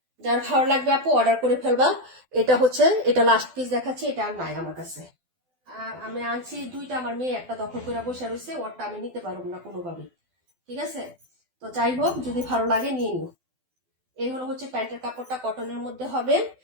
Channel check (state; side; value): late; left; 12 ms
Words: যার ভালো লাগবে আপু অর্ডার করে ফেলবা। এটা হচ্ছে এটা লাস্ট পিস দেখাচ্ছি, এটা আর নাই আমার কাছে। আমি আনছি দুইটা, আমার মেয়ে একটা দখল করে বসে রয়েছে, ওরটা আমি নিতে পারবো না কোনোভাবেই, ঠিক আছে। তো যাই হোক যদি ভালো লাগে নিয়ে নিও। এই হলো হচ্ছে প্যান্টের কাপড়টা কটনের মধ্যে হবে,